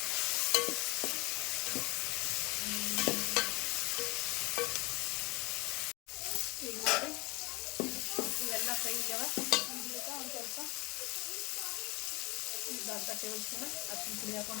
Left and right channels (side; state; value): right; quieter; 25.7 dB